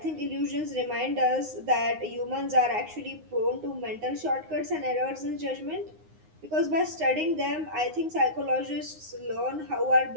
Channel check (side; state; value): left; late; 9.6 ms